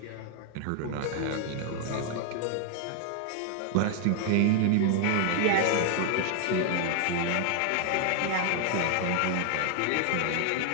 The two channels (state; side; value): different; both; correlation 0.00